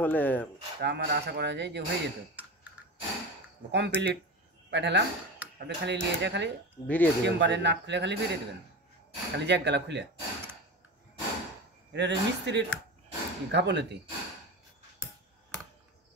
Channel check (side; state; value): both; normal; correlation 0.26